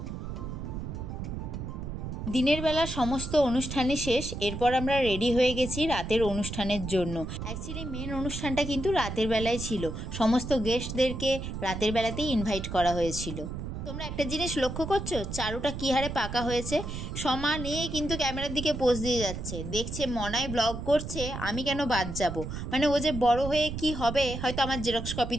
দিনের বেলা সমস্ত অনুষ্ঠানই শেষ, এরপর আমরা রেডি হয়ে গেছি রাতের অনুষ্ঠানের জন্য। অ্যাকচুয়ালি মেন অনুষ্ঠানটা কিন্তু রাতের বেলায় ছিল, সমস্ত গেস্টদেরকে রাতের বেলাতেই ইনভাইট করা হয়েছিল। তো তোমরা একটা জিনিস লক্ষ্য করছো, চারুটা কী হারে পাকা হয়েছে। সমানে কিন্তু ক্যামেরার দিকে পোজ দিয়ে যাচ্ছে, দেখছে মনায় ব্লগ করছে, আমি কেন বাদ যাব। মানে ও যে বড় হয়ে কি হবে, হয়তো আমার জেরক্স কপি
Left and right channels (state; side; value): noise; right; rumble, 6 dB below the sound